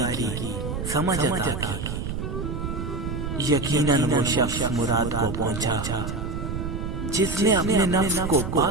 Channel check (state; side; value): noise; right; rumble, 4 dB below the sound